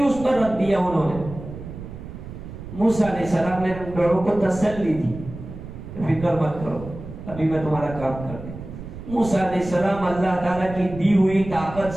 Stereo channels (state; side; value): noise; right; rumble, 12 dB below the sound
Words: پر رکھ دیا انہوں نے۔ موسیٰ علیہ السلام نے ان لوگوں کو تسلی دی، فکر مت کرو، ابھی میں تمہارا کام کر دوں۔ موسیٰ علیہ السلام اللہ تعالیٰ کی دی ہوئی طاقت